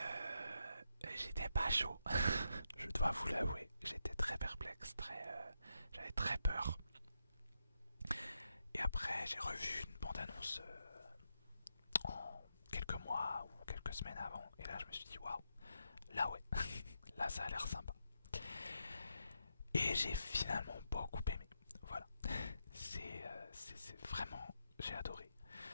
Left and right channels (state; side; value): inverted; both; correlation -0.84